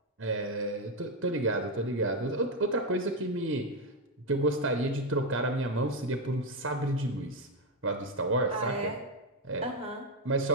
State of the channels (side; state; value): both; normal; correlation 0.07